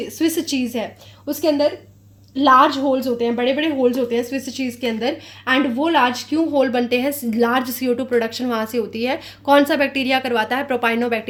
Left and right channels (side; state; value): both; identical; correlation 1.00